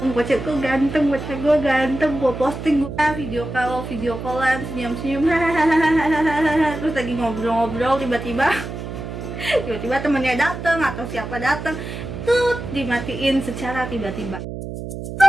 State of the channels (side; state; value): right; noise; hum, 8 dB below the sound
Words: bocah gue ganteng, gue posting gue video callan senyum-senyum terus lagi ngobrol-ngobrol tiba-tiba temennya dateng atau siapa dateng tuh dimatiin secara tiba-tiba.